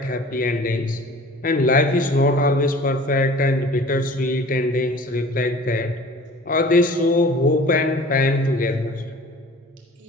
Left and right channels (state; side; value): normal; both; correlation 0.45